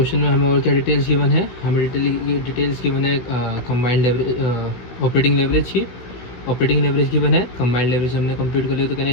में हमें और क्या डिटेल्स गिवन है? हमें डिटेल्स गिवन है कंबाइंड लेवरेज, ऑपरेटिंग लेवरेज की। ऑपरेटिंग लेवरेज गिवन है, कंबाइंड लेवरेज हमने कंप्लीट कर लिया, तो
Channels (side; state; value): right; late; 16 ms